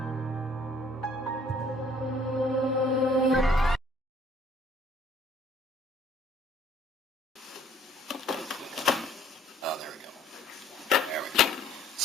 Oh, there we go. There we go.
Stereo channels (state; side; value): normal; both; correlation 0.59